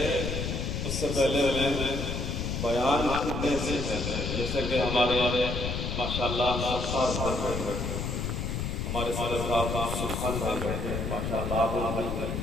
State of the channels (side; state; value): left; noise; rumble, 2 dB below the sound